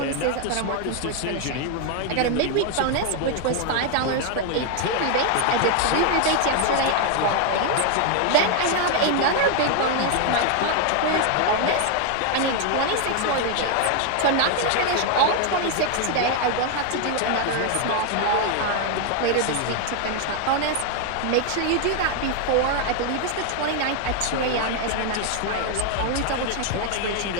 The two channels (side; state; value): both; different; correlation 0.00